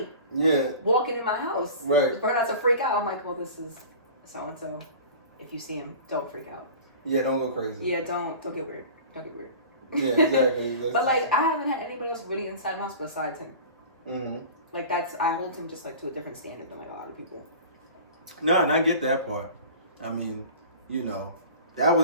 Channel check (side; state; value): both; inverted; correlation -0.38